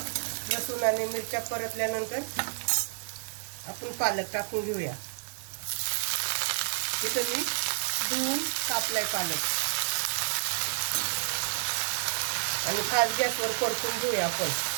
लसूण आणि मिरच्या परतल्यानंतर आपण पालक टाकून घेऊया. इथं मी धुवून कापलाय पालक आणि फास्ट गॅसवर परतून घेऊया आपण.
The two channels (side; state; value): left; silent; 56 dB below the other